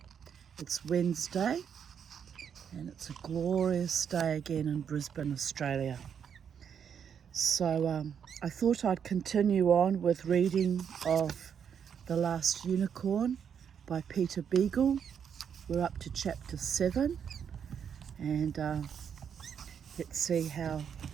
It's Wednesday and it's a glorious day again in Brisbane, Australia. So I thought I'd continue on with reading of The Last Unicorn by Peter Beagle. We're up to chapter 7 and let's see how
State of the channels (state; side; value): quieter; left; 7.8 dB